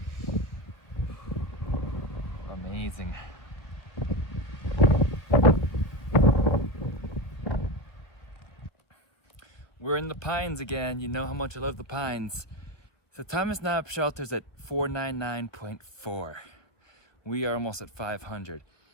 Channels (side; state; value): right; late; 1.6 ms